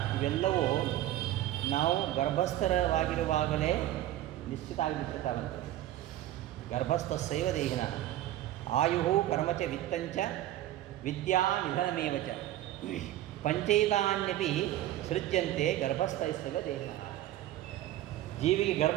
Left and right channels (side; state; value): left; quieter; 13.9 dB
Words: ಇವೆಲ್ಲವೂ ನಾವು ಗರ್ಭಸ್ಥರವಾಗಿರುವಾಗಲೇ ನಿಶ್ಚಿತ ಆಗಿಬಿಟ್ಟಿರ್ತಾವಂತೆ. ಗರ್ಭಸ್ಥಸ್ಯೈವ ದೇಹಿನ ಆಯು ಕರ್ಮಚ ವಿತ್ತಂಚ ವಿದ್ಯಾ ನಿಧನಮೇವ ಚ ಪಂಚೈತಾನ್ಯಪಿ ಸೃಜ್ಯಂತೆ ಗರ್ಭಸ್ಥೈಸ್ತವ ದೇಹಿನ. ಜೀವಿಗೆ